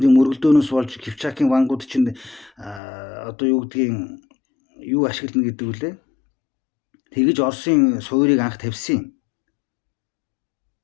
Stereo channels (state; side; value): drops out; right; at 2.8 s